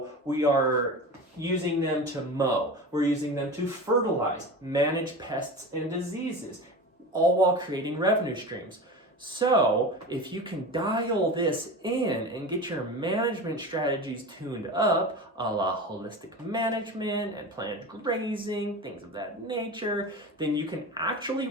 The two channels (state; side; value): normal; both; correlation 0.30